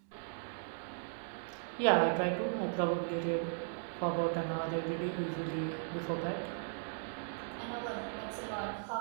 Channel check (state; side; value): silent; left; digital silence